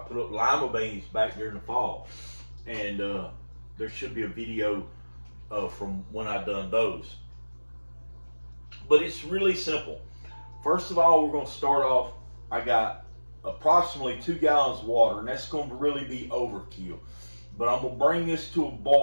up lima beans back during the fall, and there should be a video from when I done those. But it's really simple. First of all, we're going to start off. I got approximately 2 gallons of water, and that's going to really be overkill. But I'm going to bring this to a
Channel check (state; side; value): inverted; both; correlation -1.00